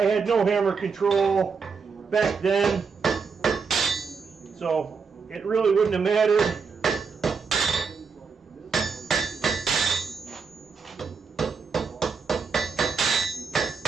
had no hammer control back then, so it really wouldn't have mattered.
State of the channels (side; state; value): left; quieter; 5.3 dB